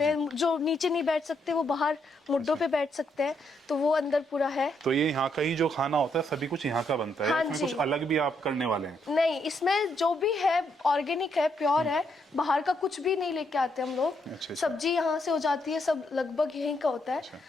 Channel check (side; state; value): both; normal; correlation 0.76